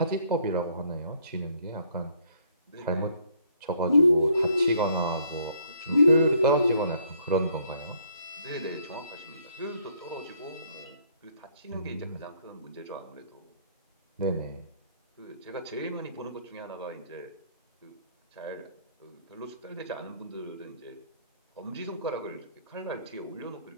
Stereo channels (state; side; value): inverted; both; correlation -0.65